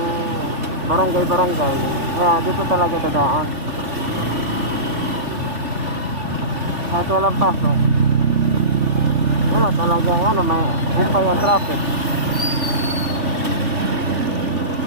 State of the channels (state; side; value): late; left; 3.4 ms